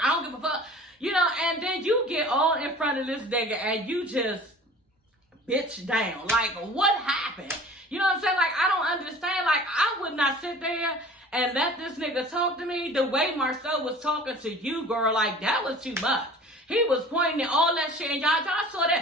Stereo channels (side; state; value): both; normal; correlation 0.44